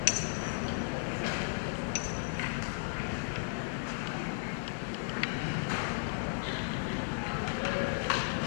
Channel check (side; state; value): right; silent; digital silence